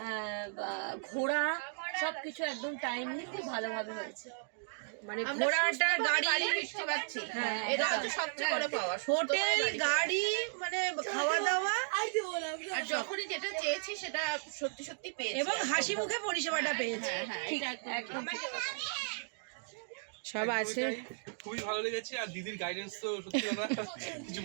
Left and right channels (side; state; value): left; silent; digital silence